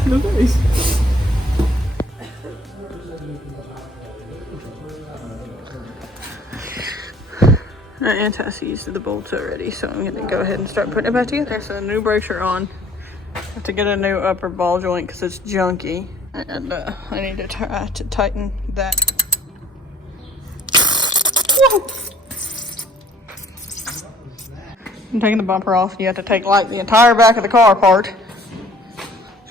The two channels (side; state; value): both; normal; correlation 0.57